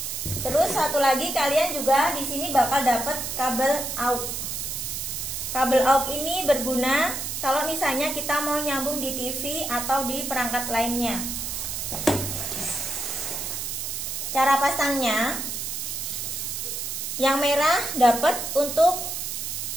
Terus satu lagi, kalian juga di sini bakal dapat kabel aux. Kabel aux ini berguna kalau misalnya kita mau nyambung di TV atau di perangkat lainnya. Cara pasangnya, yang merah dapat untuk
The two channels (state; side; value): noise; right; hiss, 4 dB below the sound